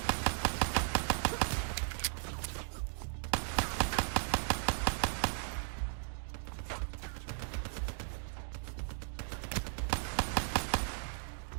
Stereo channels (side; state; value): left; silent; digital silence